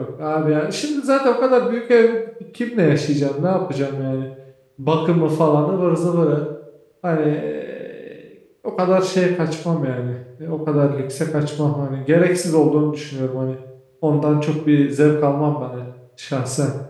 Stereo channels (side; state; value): both; identical; correlation 1.00